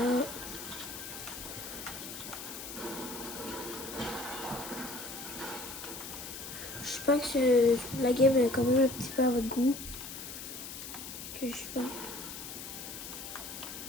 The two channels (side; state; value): left; noise; hiss, 9 dB below the sound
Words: J'espère que la game est quand même un petit peu à votre goût. Que je sais pas.